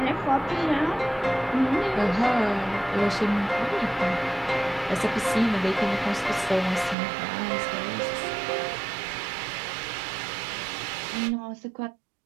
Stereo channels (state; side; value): drops out; left; at 7.0 s